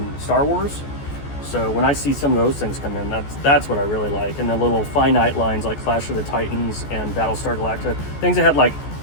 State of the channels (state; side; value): late; right; 14 ms